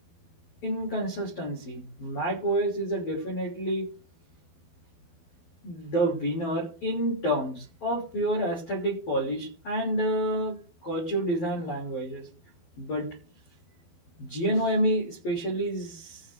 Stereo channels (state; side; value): late; right; 12 ms